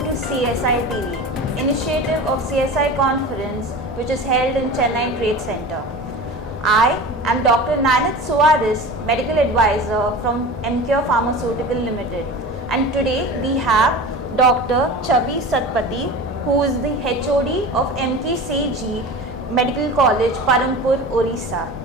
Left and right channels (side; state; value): both; normal; correlation 0.34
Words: CSI TV, initiative of CSI conference which is held in Chennai Trade Center. I am Dr. Nanit Suarez, medical advisor from MCure Pharmaceutical Limited, and today we have Dr. Chaabi Satpathy, who is the HOD of MKCG Medical College, Parampur, Orissa.